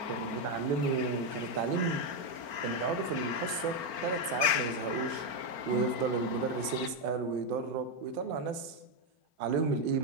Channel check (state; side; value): late; right; 4.4 ms